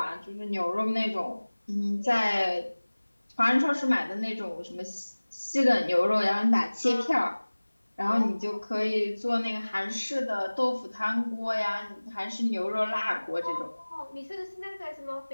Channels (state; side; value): inverted; both; correlation -1.00